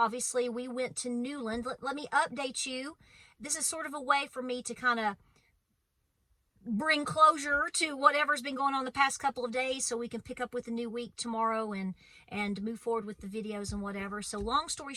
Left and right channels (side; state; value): both; identical; correlation 1.00